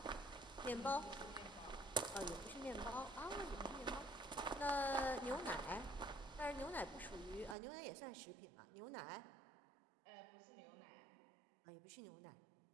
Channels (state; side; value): drops out; left; at 7.6 s